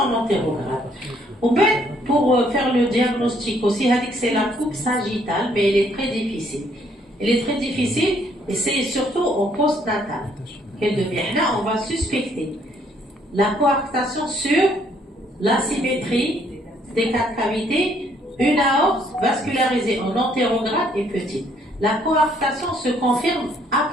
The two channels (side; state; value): both; normal; correlation 0.67